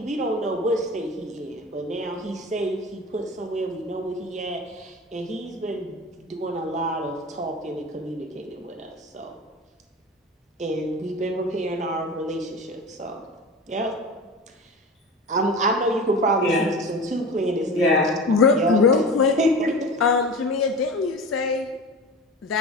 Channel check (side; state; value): both; normal; correlation 0.32